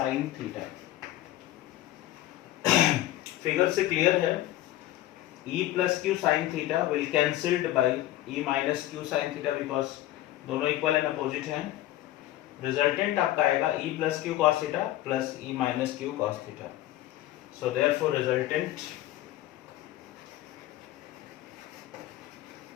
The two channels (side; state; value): right; quieter; 14.9 dB